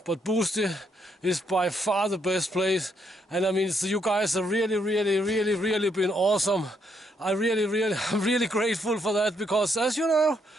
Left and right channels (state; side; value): normal; both; correlation 0.75